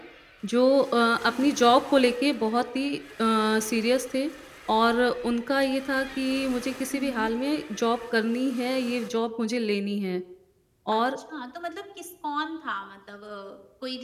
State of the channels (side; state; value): both; identical; correlation 1.00